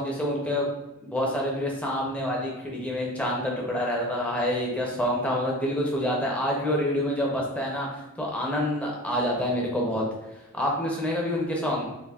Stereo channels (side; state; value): both; normal; correlation 0.38